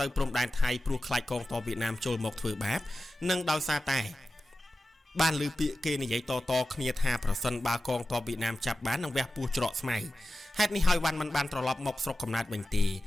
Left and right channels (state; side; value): normal; both; correlation 0.94